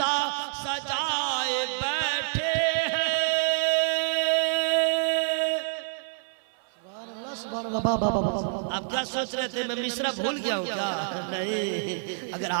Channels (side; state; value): left; silent; 60 dB below the other